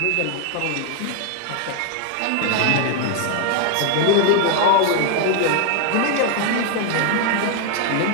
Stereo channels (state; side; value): different; both; correlation 0.01